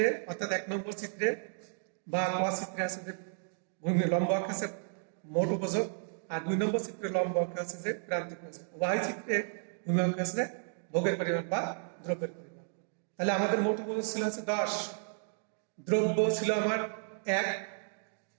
অর্থাৎ 1 নম্বর চিত্রে বা ক চিত্রে আছে যে ভূমি লম্ব অক্ষ আছে মোট উপযোগ, আর 2 নম্বর চিত্রে লম্ব অক্ষ আছে যে প্রান্তিক উপযোগ। উভয় চিত্রে ভূমি অক্ষ আছে ভোগের পরিমাণ বা দ্রব্যের পরিমাণ। তাহলে আমাদের মোট উপযোগ ছিল আছে 10, দ্রব্য ছিল আমার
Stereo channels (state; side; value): silent; left; digital silence